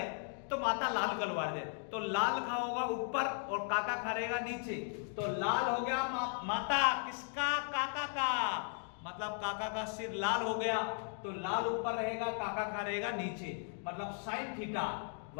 तो माथा लाल कलवा दे। तो लाल खा होगा ऊपर और काका खा रहेगा नीचे। तो लाल हो गया माथा किसका? काका का। मतलब काका का सिर लाल हो गया, तो लाल ऊपर रहेगा, काका खा रहेगा नीचे। मतलब साइन थीटा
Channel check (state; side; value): silent; right; 53 dB below the other